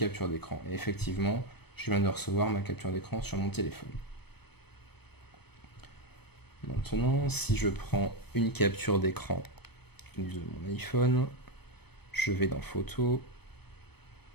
d'écran. Et effectivement, je viens de recevoir ma capture d'écran sur mon téléphone. Maintenant, si je prends une capture d'écran de mon iPhone, je vais dans Photos,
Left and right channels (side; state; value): right; late; 0.97 ms